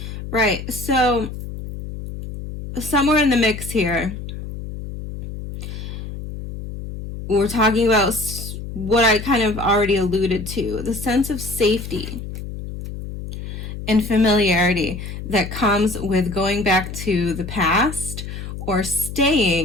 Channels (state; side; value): noise; left; hum, 9 dB below the sound